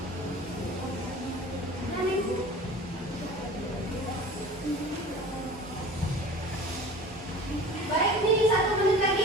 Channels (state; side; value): normal; both; correlation 0.40